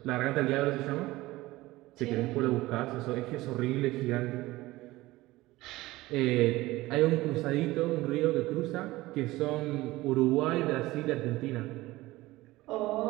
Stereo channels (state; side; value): quieter; left; 18.6 dB